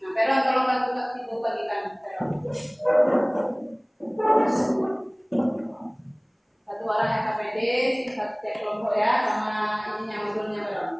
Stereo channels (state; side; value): identical; both; correlation 1.00